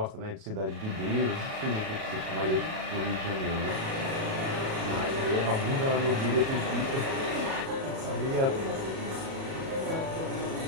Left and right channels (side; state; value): left; late; 37 ms